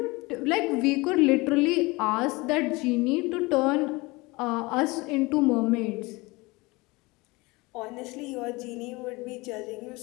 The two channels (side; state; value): right; quieter; 23.6 dB